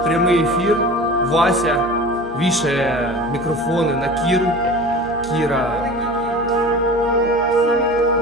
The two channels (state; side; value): normal; both; correlation 0.36